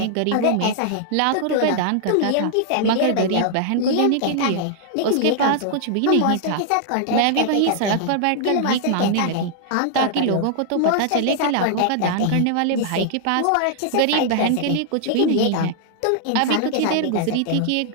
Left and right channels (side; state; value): both; different; correlation -0.01